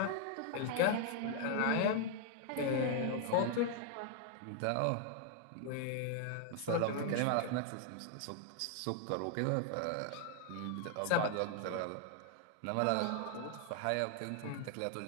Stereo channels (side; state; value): both; different; correlation 0.00